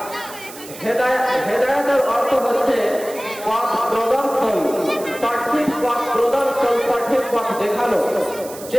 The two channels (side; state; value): right; noise; hiss, 15 dB below the sound